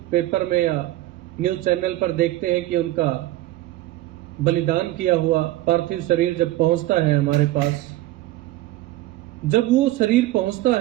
पेपर में या न्यूज चैनल पर देखते हैं कि उनका बलिदान किया हुआ पार्थिव शरीर जब पहुंचता है हमारे पास, जब वो शरीर पहुंचता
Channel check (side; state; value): left; quieter; 16.1 dB